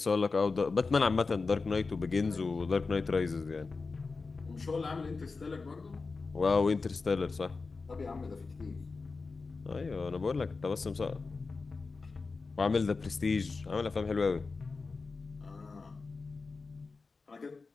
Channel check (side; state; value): right; quieter; 4.2 dB